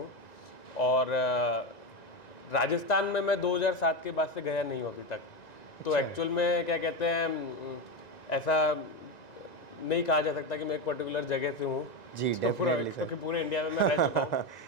और राजस्थान में मैं 2007 के बाद से गया नहीं हूँ अभी तक। तो एक्चुअल में क्या कहते हैं, ऐसा नहीं कहा जा सकता कि मैं एक पर्टिकुलर जगह से हूँ जी, तो डेफिनेटली सर। क्योंकि पूरे इंडिया में मैं रह चुका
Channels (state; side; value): late; right; 1.9 ms